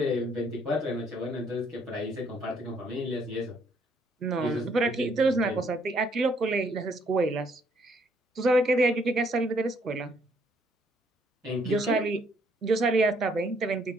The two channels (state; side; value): normal; both; correlation 0.68